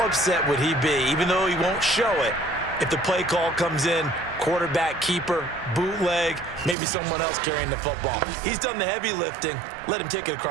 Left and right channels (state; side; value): drops out; left; at 6.8 s